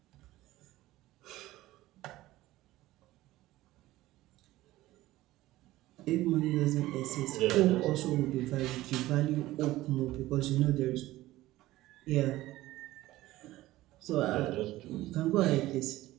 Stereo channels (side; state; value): left; quieter; 16.7 dB